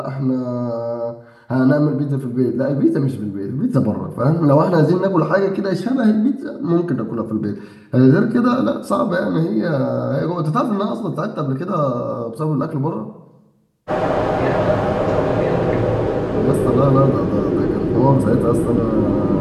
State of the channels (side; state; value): both; identical; correlation 1.00